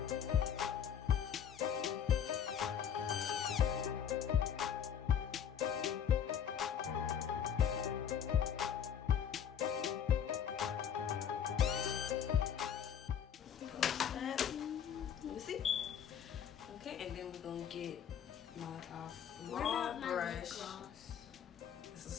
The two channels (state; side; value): quieter; right; 8.4 dB